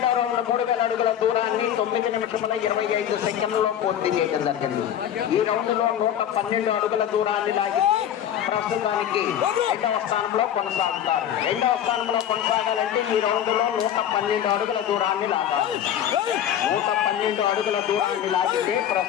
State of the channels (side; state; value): right; quieter; 10.2 dB